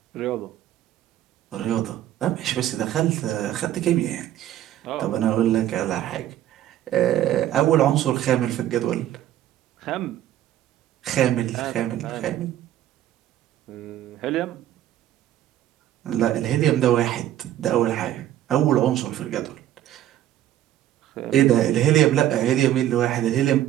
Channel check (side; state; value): left; quieter; 12.5 dB